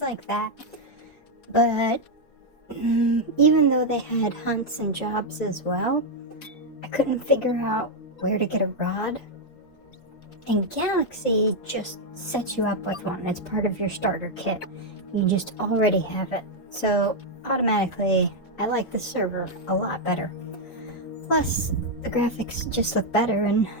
like that, but even though they had hunts and jobs as well, I couldn't figure out where to get a rod. And Galaxy just sets you up with one. It's part of your starter kit. You just already have it. So automatically, I like the server a lot better. Plus, the graphics just look better and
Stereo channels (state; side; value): late; right; 4.0 ms